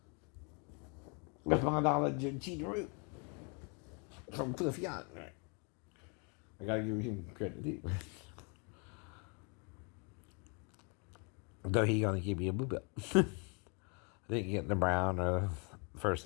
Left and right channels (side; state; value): right; quieter; 35.6 dB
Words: With my knowledge of Cheetah Root from Cliff Young, right? I gotta give him credit too. Though he gonna give me a blue belt. I didn't get the brown or First,